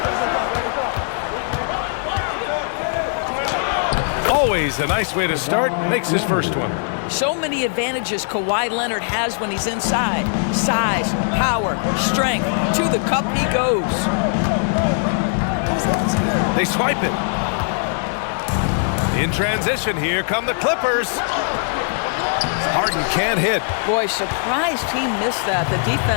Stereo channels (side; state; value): right; silent; digital silence